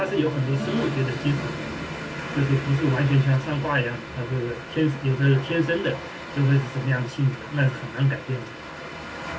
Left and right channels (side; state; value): both; identical; correlation 1.00